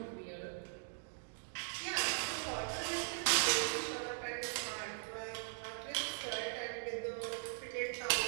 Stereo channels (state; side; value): silent; left; digital silence